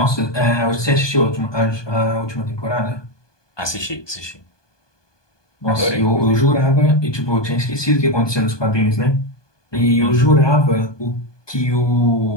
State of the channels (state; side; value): late; right; 1.2 ms